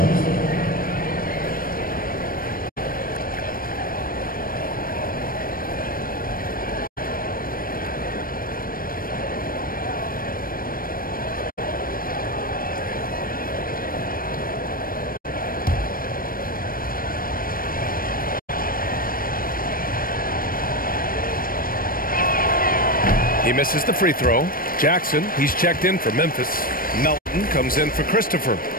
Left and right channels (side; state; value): right; late; 0.41 ms